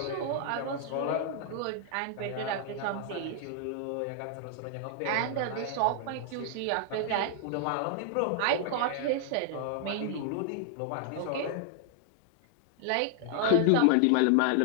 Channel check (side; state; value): both; different; correlation 0.00